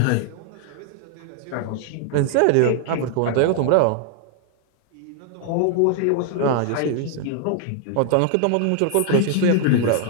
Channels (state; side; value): different; both; correlation 0.00